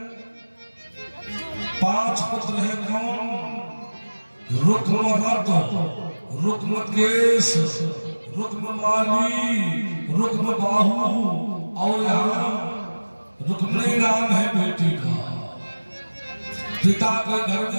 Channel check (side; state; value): both; inverted; correlation -1.00